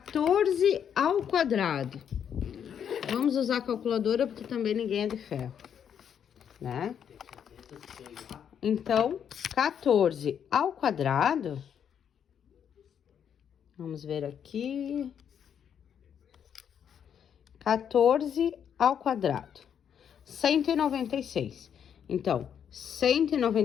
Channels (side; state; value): right; quieter; 8.4 dB